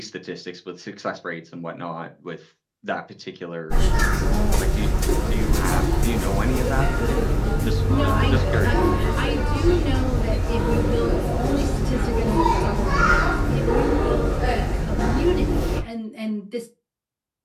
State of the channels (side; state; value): both; identical; correlation 1.00